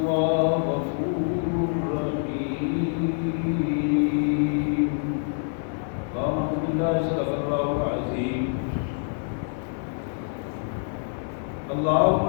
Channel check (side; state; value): right; silent; digital silence